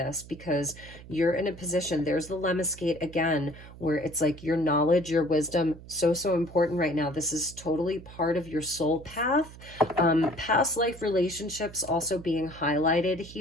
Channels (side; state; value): right; noise; hum, 17 dB below the sound